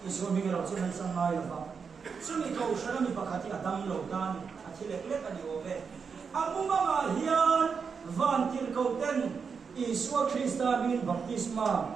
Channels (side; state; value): left; quieter; 5.8 dB